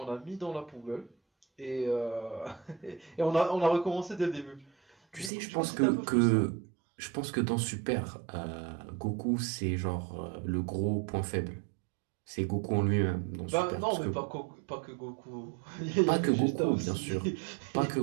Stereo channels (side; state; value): left; drops out; at 5.3 s